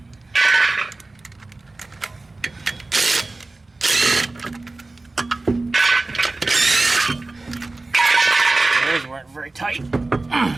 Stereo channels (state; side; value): quieter; left; 3.2 dB